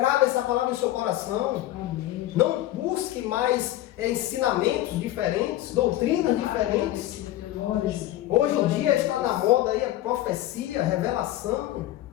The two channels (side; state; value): right; quieter; 14.6 dB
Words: essa palavra no seu coração. Amém. Não busque mais ensinamentos diferentes, doutrinas diferentes. Hoje em dia está na moda aí a profecia, a revelação.